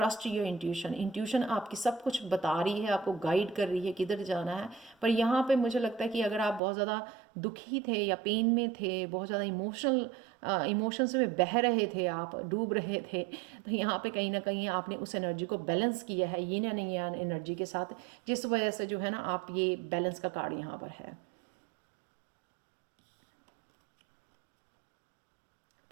योर इंट्यूशन। इंट्यूशन आपकी सब कुछ बता रही है, आपको गाइड कर रही है किधर जाना है। पर यहाँ पे मुझे लगता है कि अगर आप बहुत ज़्यादा दुखी थे या पेन में थे, बहुत ज़्यादा इमोशंस में बह रहे थे, आप डूब रहे थे, तो यहाँ पे कहीं ना कहीं आपने उस एनर्जी को बैलेंस किया है यिन एंड yang एनर्जी के साथ, जिस वजह से जो है ना आप ये बैलेंस का कार्ड यहाँ पर है।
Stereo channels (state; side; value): drops out; left; at 6.6 s